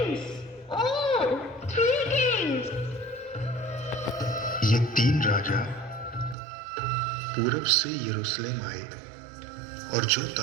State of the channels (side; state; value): left; drops out; at 6.4 s